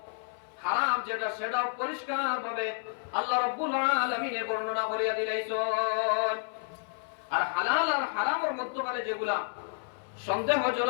হারাম যেটা সেটা পরিষ্কার ভাবে আল্লাহ রাব্বুল আলামিন বর্ণনা করিয়া দিলেন আর হালাল আর হারামের মধ্যে যেগুলা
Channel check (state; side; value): silent; right; 57 dB below the other